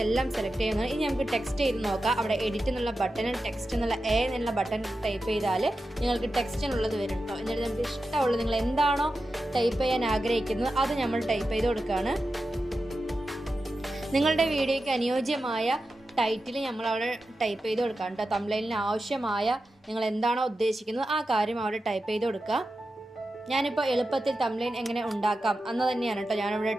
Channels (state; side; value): normal; both; correlation 0.91